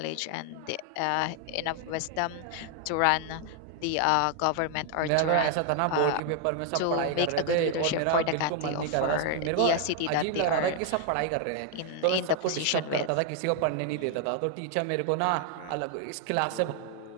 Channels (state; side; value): different; both; correlation 0.00